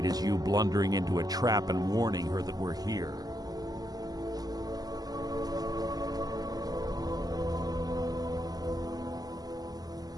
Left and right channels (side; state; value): left; late; 0.18 ms